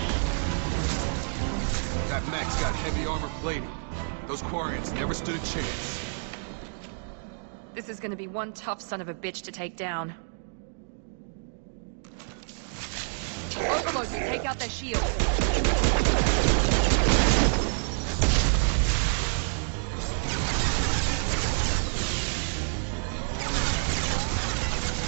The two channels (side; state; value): left; silent; 59 dB below the other